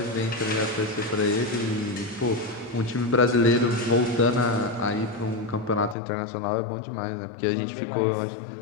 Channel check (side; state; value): right; drops out; at 6.0 s